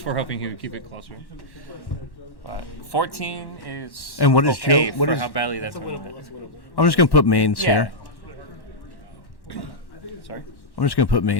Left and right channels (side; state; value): right; late; 1.1 ms